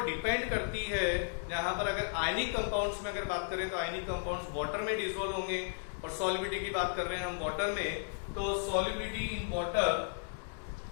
डिपेंड करती है, यहाँ पर अगर आयनिक कंपाउंड्स में अगर बात करें तो आयनिक कंपाउंड्स वाटर में डिसॉल्व होंगे, और सॉलिबिलिटी की बात कर रहे हैं हम वाटर में, तो solubility in water,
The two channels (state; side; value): silent; right; digital silence